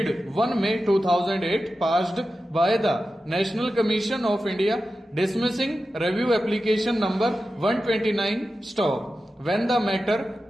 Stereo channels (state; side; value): normal; both; correlation 0.92